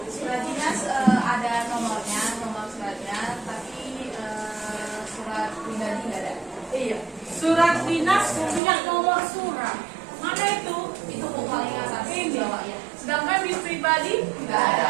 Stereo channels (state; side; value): drops out; left; at 8.6 s